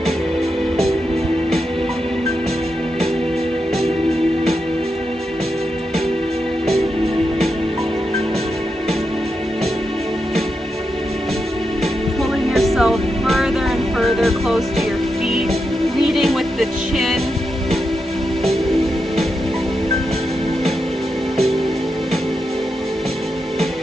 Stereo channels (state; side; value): normal; both; correlation 0.86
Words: Pulling yourself further and further close to your feet, leading with the chin.